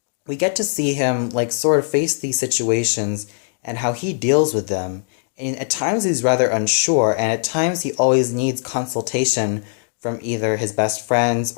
We get to see him sort of face these situations and how he deals with them. And at times he's rather unsure, and at times he always needs consultation from either his best friends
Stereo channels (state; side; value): silent; right; digital silence